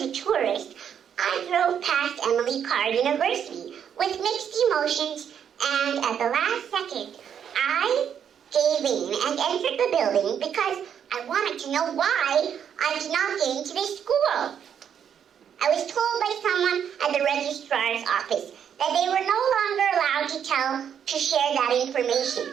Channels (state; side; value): quieter; left; 8.4 dB